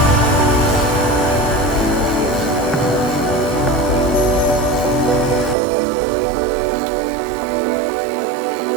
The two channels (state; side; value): drops out; left; at 5.6 s